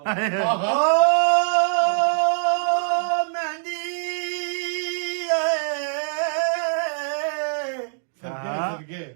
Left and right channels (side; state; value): left; silent; digital silence